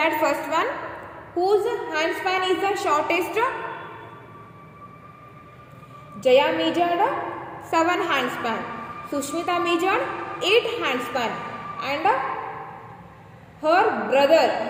first one, whose hand span is the shortest? Jaya measured 7 hand span. Sushmita measured 8 hand span, and her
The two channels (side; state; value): both; identical; correlation 1.00